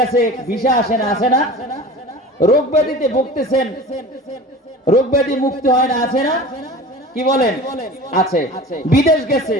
ভিসা আসে না, আছে না? রোগ ব্যাধিতে ভুগতেছেন, রোগ ব্যাধি মুক্তি হয় না, আছে না? কি বলেন? আছে। বিদেশ গেছে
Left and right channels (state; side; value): normal; both; correlation 0.37